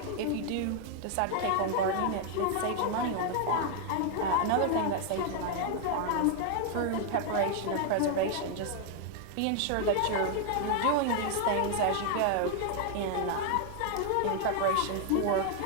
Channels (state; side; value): different; both; correlation 0.00